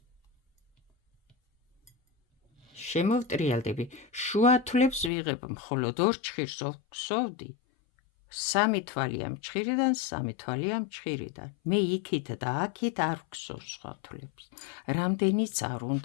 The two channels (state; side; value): drops out; right; at 5.1 s